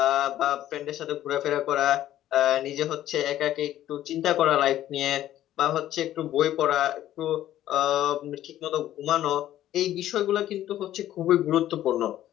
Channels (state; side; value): quieter; right; 12.8 dB